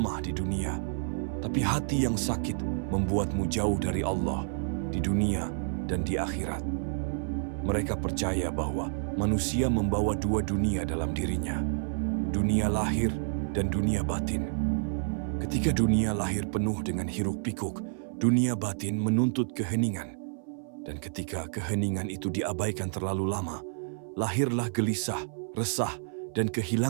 di dunia, tapi hati yang sakit membuatmu jauh dari Allah, di dunia dan di akhirat. Mereka percaya bahwa manusia membawa dua dunia dalam dirinya, dunia lahir dan dunia batin. Ketika dunia lahir penuh dengan hiruk-pikuk, dunia batin menuntut keheningan. Dan ketika keheningan itu diabaikan terlalu lama, lahirlah gelisah, resah, dan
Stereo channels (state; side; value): silent; left; 58 dB below the other